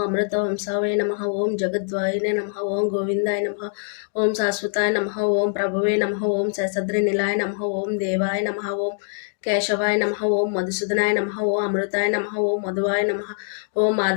అమృతవంశాయ నమః. ఓం జగద్వాయినే నమః. ఓం గోవిందాయ నమః. ఓం శాశ్వతాయ నమః. ఓం ప్రభువే నమః. ఓం శేషద్రి నిలాయ నమః. ఓం దేవాయ నమః. ఓం కేశవాయ నమః. ఓం మధుసూదనాయ నమః. ఓం అమృతాయ నమః. ఓం మధువాయ నమః. ఓం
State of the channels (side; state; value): right; silent; digital silence